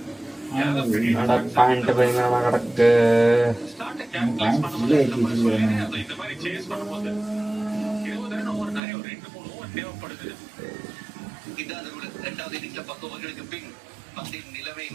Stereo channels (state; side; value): drops out; left; at 8.8 s